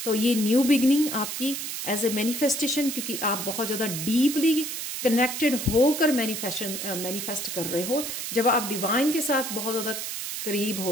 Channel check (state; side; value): noise; right; hiss, 5 dB below the sound